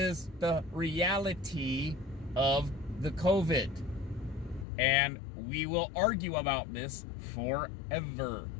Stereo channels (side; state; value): right; drops out; at 4.7 s